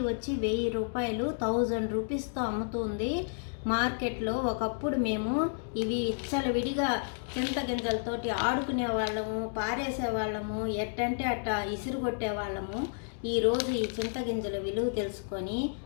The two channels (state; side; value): silent; right; digital silence